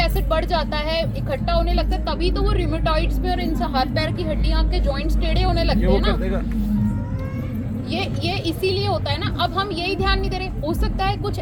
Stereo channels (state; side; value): identical; both; correlation 1.00